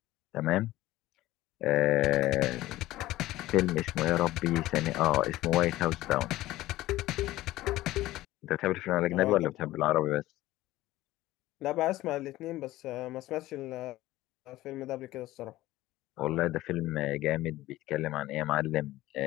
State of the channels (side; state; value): right; quieter; 16.6 dB